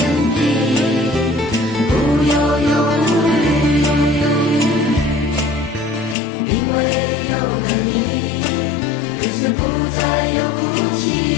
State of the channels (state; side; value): drops out; right; at 6.2 s